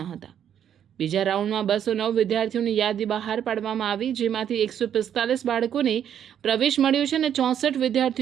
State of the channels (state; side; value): quieter; left; 9.4 dB